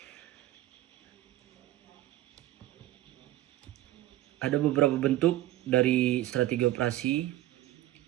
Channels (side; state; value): left; quieter; 15.1 dB